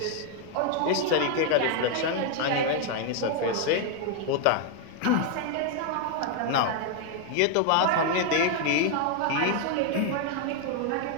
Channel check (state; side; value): different; both; correlation 0.00